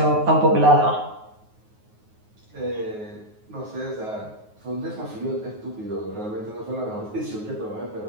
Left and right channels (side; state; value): left; late; 9.4 ms